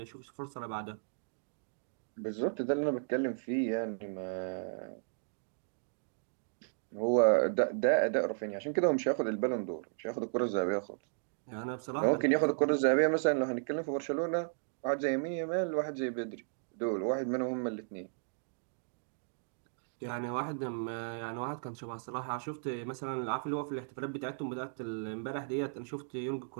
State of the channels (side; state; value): left; silent; digital silence